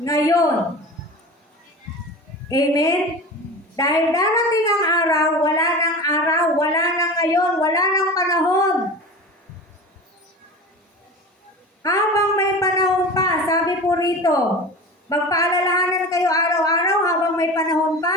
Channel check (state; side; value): normal; both; correlation 0.32